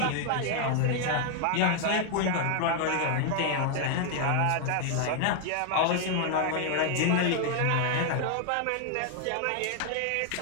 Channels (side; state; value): both; different; correlation 0.00